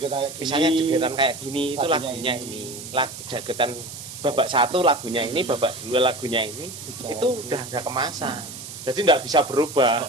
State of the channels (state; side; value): noise; right; hiss, 12 dB below the sound